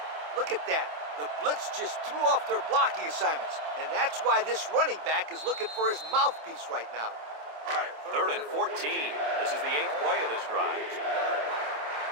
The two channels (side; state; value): left; late; 27 ms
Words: Look at that. The blitz just threw off their blocking assignments, and that's why this running back is looking for his mouthpiece right now. Third and 14. This is the 8th play of this drive.